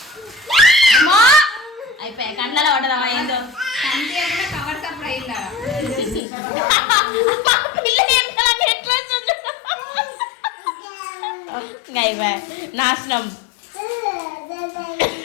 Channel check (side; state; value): right; drops out; at 6.2 s